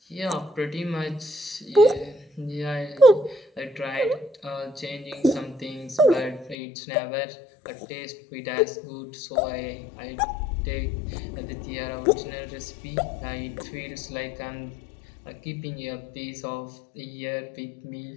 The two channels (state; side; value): drops out; right; at 6.6 s